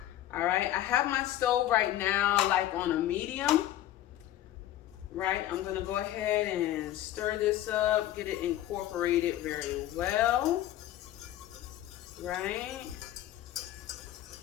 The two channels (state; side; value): quieter; right; 13.3 dB